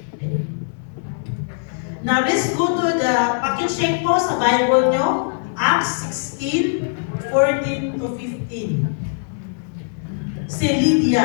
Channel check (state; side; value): silent; right; digital silence